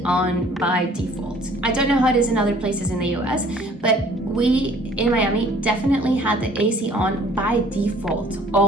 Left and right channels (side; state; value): both; normal; correlation 0.55